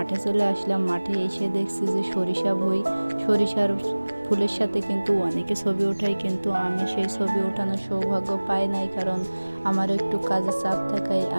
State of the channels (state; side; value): inverted; both; correlation -1.00